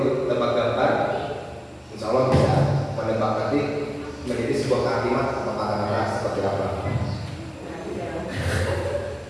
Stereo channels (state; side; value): identical; both; correlation 1.00